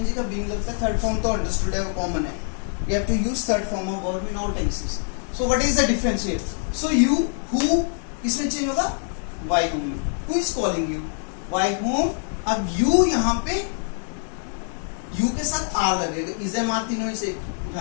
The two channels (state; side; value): silent; right; 62 dB below the other